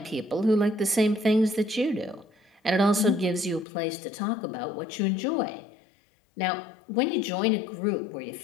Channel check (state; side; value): drops out; right; at 3.7 s